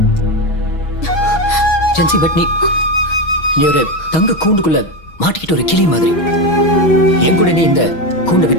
ஜென்சி, பட் நீ ஒரு தங்க கூண்டுக்குள்ள மாட்டிக்கிட்டு ஒரு கிளி மாதிரி. என் கூட நீ இந்த கூண்டை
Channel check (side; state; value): right; late; 6.3 ms